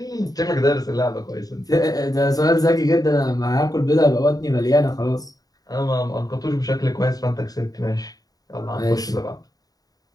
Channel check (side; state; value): right; late; 0.18 ms